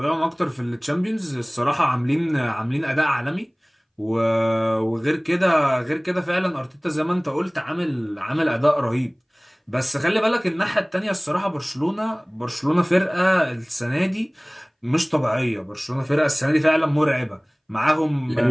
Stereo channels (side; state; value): both; identical; correlation 1.00